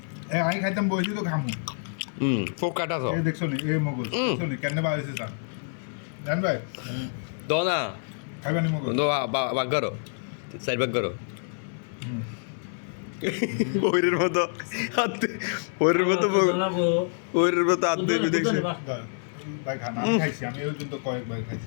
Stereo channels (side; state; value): right; silent; digital silence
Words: আমি খাইতাম বইছি তো খামু পোকাটা তো এই দেখছো নি এই মগজ দেখছো নি কেন বাইছে স্যার জান ভাই দো না খাইবানি মগজ দো বাগ করো সাইড বাগ করো ওইরের মতো ওইরের মতো ওইরের মতো হাত দিয়ে দেখছি ভাই খানা আমি খাইছি আমি ওই জন্য কয়েকবার খাইছি